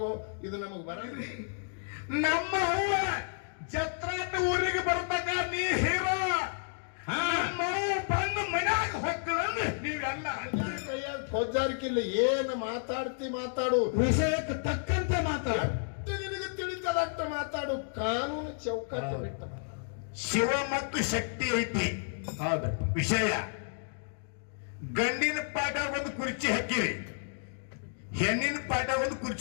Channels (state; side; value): silent; right; digital silence